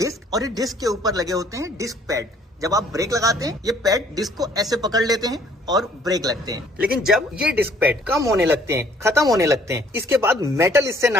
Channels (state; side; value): normal; both; correlation 0.60